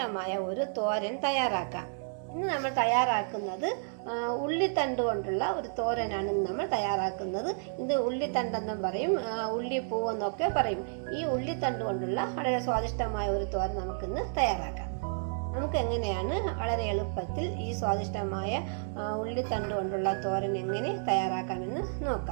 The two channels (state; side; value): silent; left; 57 dB below the other